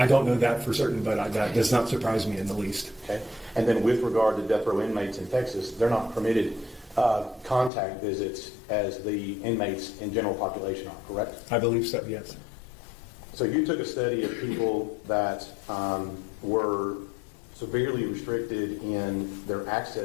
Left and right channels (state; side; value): drops out; right; at 7.7 s